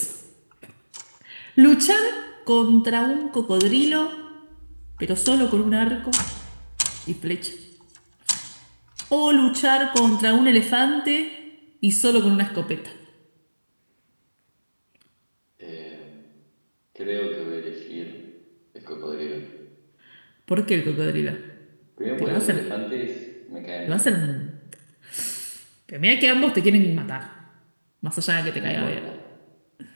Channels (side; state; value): both; inverted; correlation -1.00